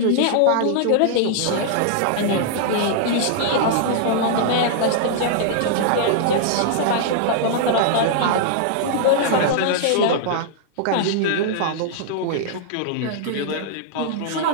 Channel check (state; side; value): different; both; correlation -0.01